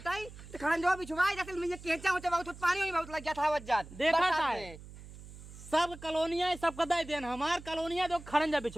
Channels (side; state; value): right; noise; hum, 16 dB below the sound